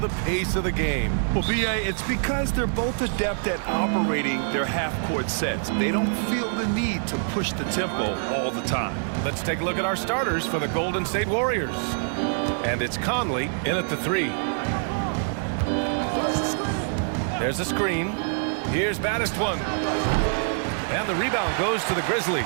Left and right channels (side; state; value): left; silent; digital silence